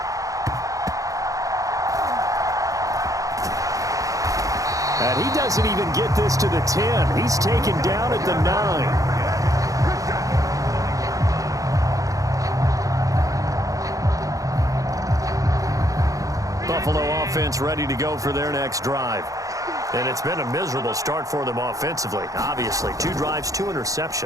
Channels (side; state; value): left; late; 0.16 ms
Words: And he doesn't even get this to the 10. He's taken down at the 9. Buffalo offense ready to go for their next drive. And it's been a miserable start for them offensively. Obviously, 2 drives, 2